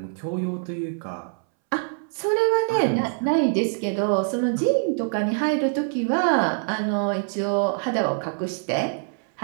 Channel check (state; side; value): silent; left; 62 dB below the other